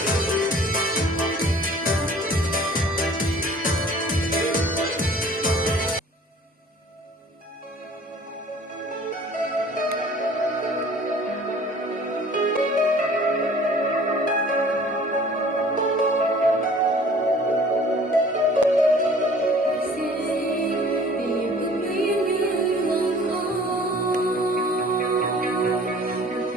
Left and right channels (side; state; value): both; normal; correlation 0.50